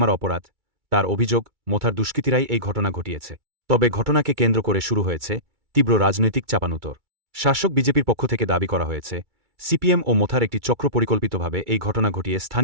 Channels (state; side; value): late; left; 2.3 ms